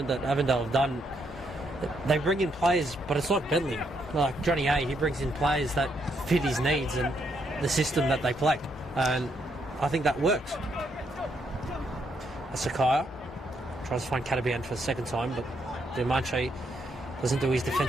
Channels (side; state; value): both; normal; correlation 0.76